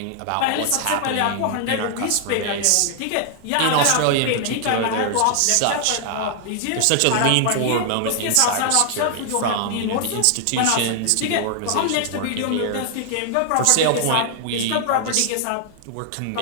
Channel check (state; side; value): different; both; correlation 0.00